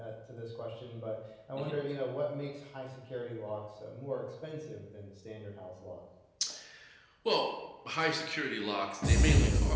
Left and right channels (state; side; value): identical; both; correlation 1.00